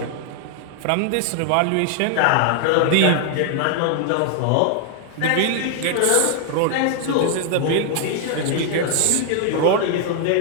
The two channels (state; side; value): different; both; correlation 0.00